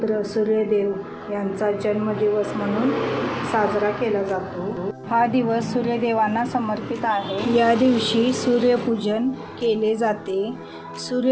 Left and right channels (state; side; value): identical; both; correlation 1.00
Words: सूर्यदेव यांचा जन्मदिवस म्हणून साजरा केला जातो। हा दिवस सूर्यदेवांना समर्पित आहे। या दिवशी सूर्यपूजन केले जाते।